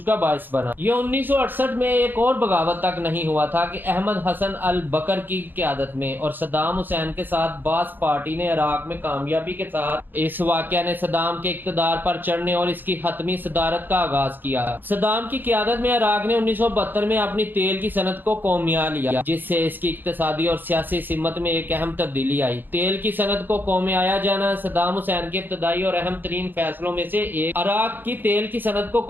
کا باعث بنا۔ یہ 1968 میں ایک اور بغاوت تک نہیں ہوا تھا کہ احمد حسن البکر کی قیادت میں اور صدام حسین کے ساتھ باعث پارٹی نے عراق میں کامیابی کے ساتھ اس واقعہ نے صدام کے اقتدار پر چڑھنے اور اس کی حتمی صدارت کا آغاز کیا۔ صدام کی قیادت میں عراق نے 1972 میں اپنی تیل کی صنعت کو قومیہ لیا، جس سے اس کی اقتصادی اور سیاسی سمت میں ایک اہم تبدیلی آئی۔ تیل کی صنعت کو قومیہ جانا صدام حسین کے ابتدائی اور اہم ترین فیصلوں میں سے ایک عراق کی تیل کی صنعت کو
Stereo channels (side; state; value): left; late; 0.091 ms